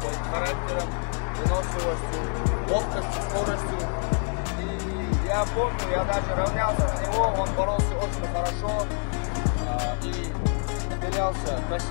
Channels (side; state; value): right; silent; 55 dB below the other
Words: характером, выносливостью, ловкостью, скоростью. И я помню, я даже равнялся на него, он боролся очень хорошо и выделялся